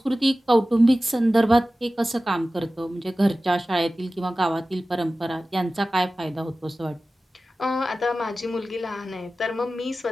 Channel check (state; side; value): normal; both; correlation 0.96